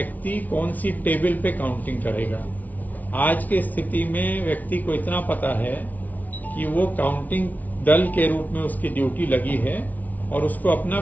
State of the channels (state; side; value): late; right; 0.076 ms